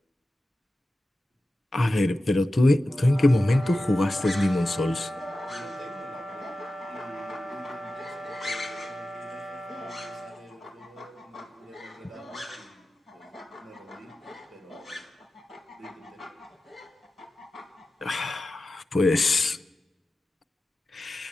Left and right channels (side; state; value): both; normal; correlation 0.94